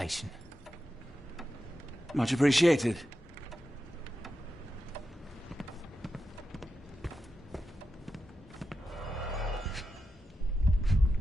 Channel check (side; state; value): both; normal; correlation 0.89